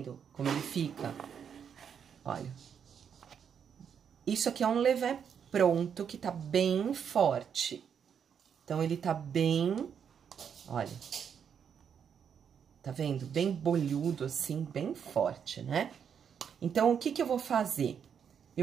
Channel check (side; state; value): left; quieter; 7.6 dB